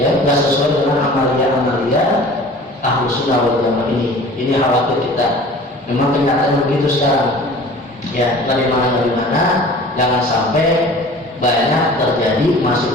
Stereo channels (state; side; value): normal; both; correlation 0.44